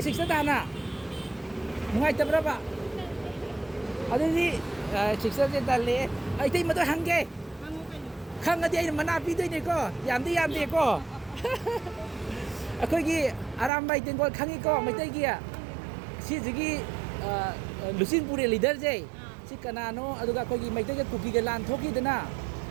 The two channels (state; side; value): drops out; left; at 13.7 s